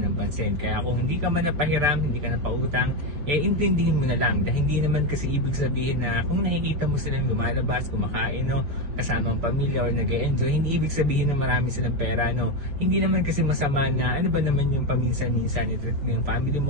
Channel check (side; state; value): left; late; 6.6 ms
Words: ng pansin. Kaya kung hindi ka man napahiram, hindi ka napautang, intindihin mo na lang. Dahil hindi naman kasi ibig sabihin na kung nakikita mo silang lumalabas, kumakain, kasama ang pamilya or nag-e-enjoy, hindi ibig sabihin na marami silang pera. Hindi naman kasi masama na ano ba naman yung paminsan-minsan i-treat mo yung family